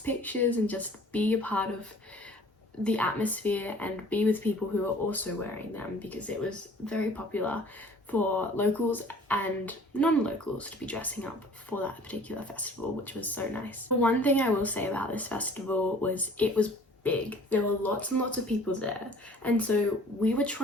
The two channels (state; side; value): normal; both; correlation 0.50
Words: and just be a part of the atmosphere and be with people who are also wearing them, because it was very popular for locals and non-locals to be dressing up for that particular festival, which was so nice. One thing I will say about this festival was it was big. There were lots and lots of people there, and so we were